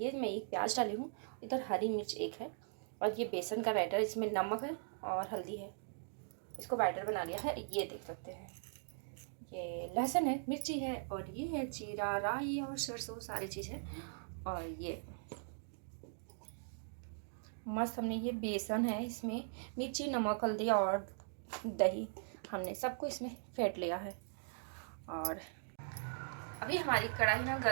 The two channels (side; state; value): left; silent; digital silence